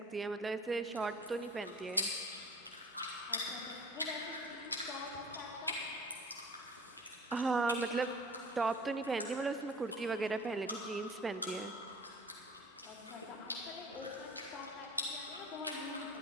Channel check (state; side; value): normal; both; correlation 0.41